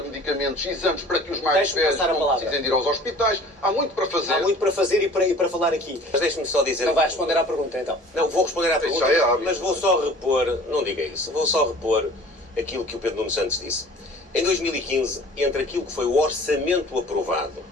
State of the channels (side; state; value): both; normal; correlation 0.47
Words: medicamentos e exames para que os mais velhos não precisem de ir aos hospitais. Há muito para fazer. Há muito para fazer e para falar aqui. Mas deixe-me só dizer... Não vai responder à pergunta, então. Não, vou responder à pergunta, mas vou só repor, não diga isso, vou só repor aquilo que o Pedro Nuno Santos disse. Em 2015, entre aquilo que foi o orçamento aprovado